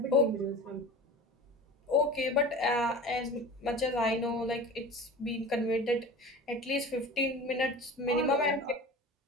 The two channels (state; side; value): normal; both; correlation 0.36